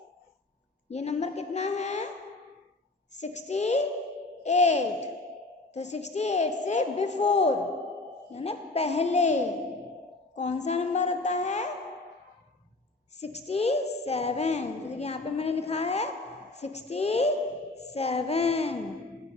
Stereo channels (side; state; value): right; quieter; 3.1 dB